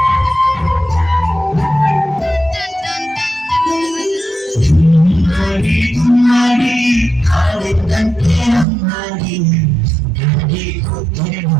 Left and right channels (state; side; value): drops out; left; at 8.7 s